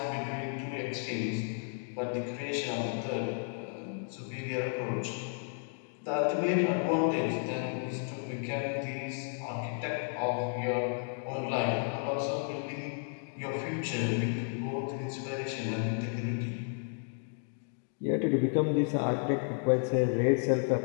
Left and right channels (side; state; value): right; silent; 56 dB below the other